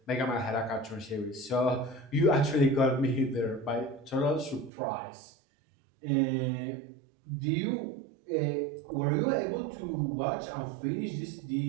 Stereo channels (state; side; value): drops out; left; at 4.7 s